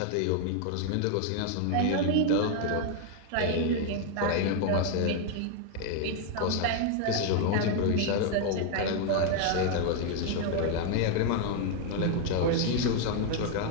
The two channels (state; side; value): different; both; correlation 0.00